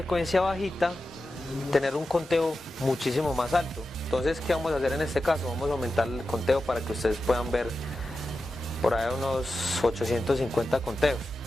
bajita, tener un conteo muchísimo más alto. Entonces, ¿qué vamos a hacer en este caso? Vamos a aumentar el conteo para que ustedes puedan ver por ahí unos 850 conteos.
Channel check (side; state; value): both; normal; correlation 0.92